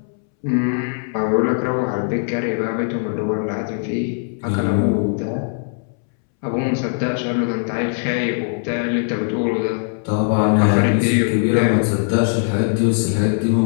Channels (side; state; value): right; silent; 66 dB below the other